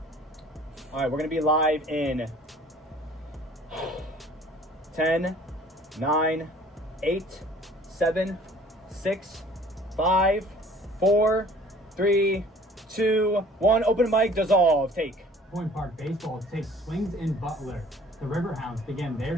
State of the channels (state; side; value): normal; both; correlation 0.51